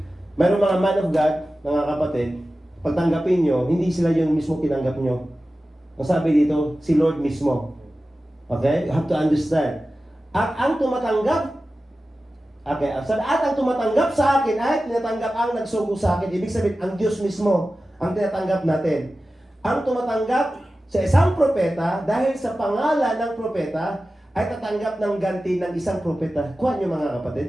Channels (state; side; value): normal; both; correlation 0.95